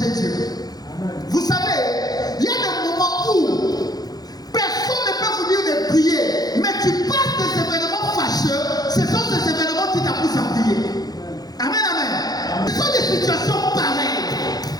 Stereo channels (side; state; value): right; late; 0.19 ms